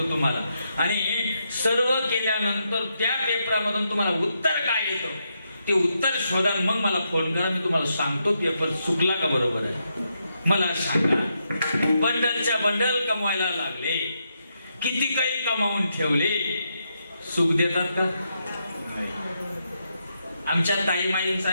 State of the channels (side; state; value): both; inverted; correlation -0.81